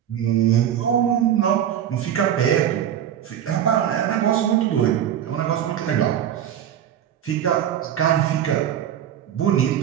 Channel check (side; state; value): left; quieter; 10.1 dB